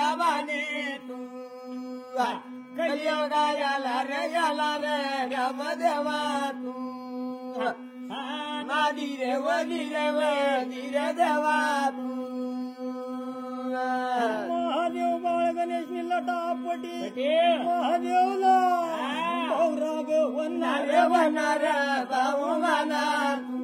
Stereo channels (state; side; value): identical; both; correlation 1.00